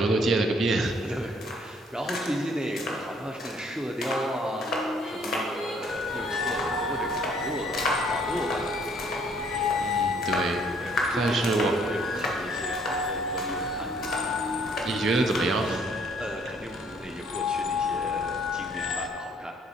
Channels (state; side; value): normal; both; correlation 0.63